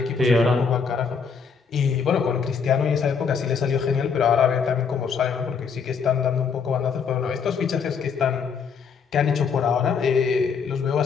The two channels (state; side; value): quieter; right; 6.0 dB